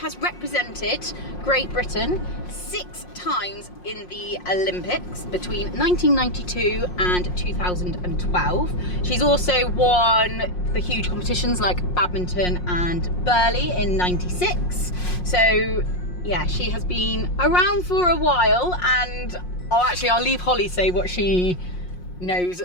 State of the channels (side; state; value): right; late; 5.6 ms